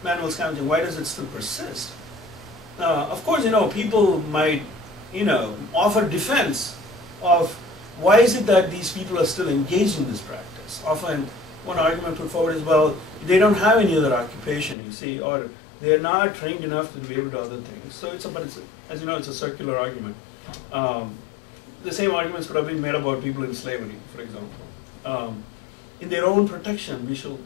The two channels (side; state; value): right; drops out; at 14.8 s